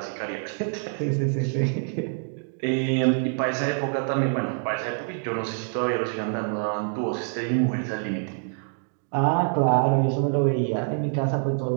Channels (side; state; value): left; silent; 56 dB below the other